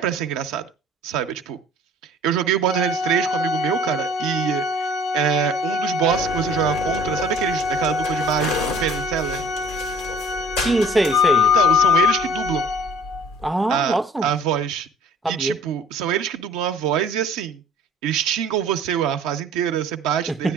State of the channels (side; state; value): both; normal; correlation 0.49